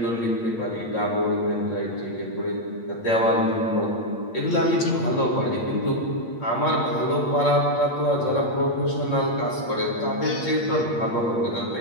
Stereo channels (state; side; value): late; right; 8.6 ms